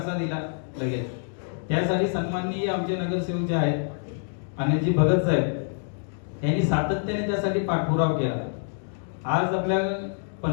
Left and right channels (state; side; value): silent; right; digital silence